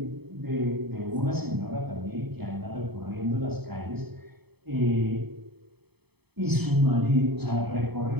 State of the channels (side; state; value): left; late; 0.97 ms